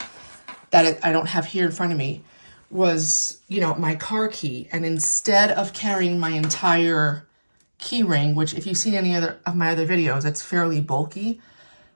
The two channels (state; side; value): inverted; both; correlation -1.00